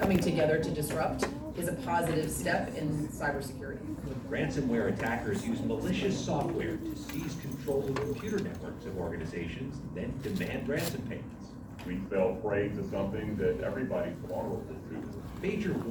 together to disrupt is a positive step in cybersecurity. Ransomware attackers use malicious software to seize control of computer networks of organizations, then demand ransom payments. We fell prey to something that everybody's vulnerable to. Major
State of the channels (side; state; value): both; identical; correlation 1.00